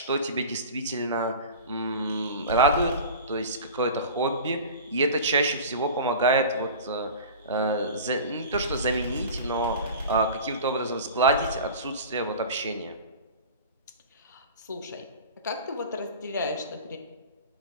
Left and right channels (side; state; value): both; inverted; correlation -0.36